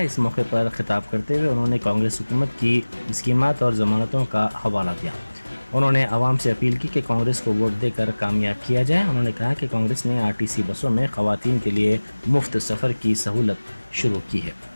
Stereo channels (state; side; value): inverted; both; correlation -1.00